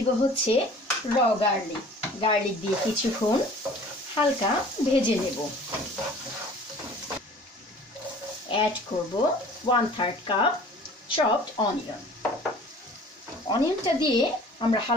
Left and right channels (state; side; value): normal; both; correlation 0.47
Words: হচ্ছে র গার্লিক। গার্লিক দিয়ে কিছুক্ষণ হালকা ভেজে নেব। অ্যাড করব 1/3 কাপ চপড অনিয়ন। অনিয়নটা দিয়ে আমরা